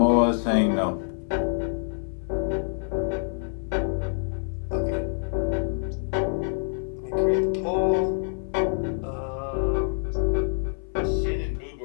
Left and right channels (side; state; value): right; silent; 59 dB below the other